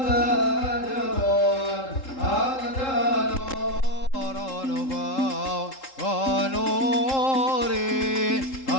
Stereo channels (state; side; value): late; right; 3.7 ms